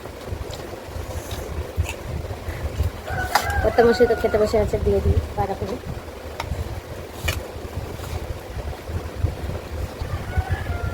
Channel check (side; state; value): both; identical; correlation 1.00